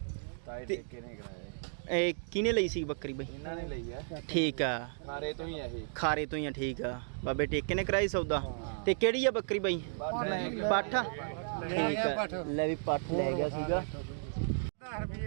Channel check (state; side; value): silent; left; digital silence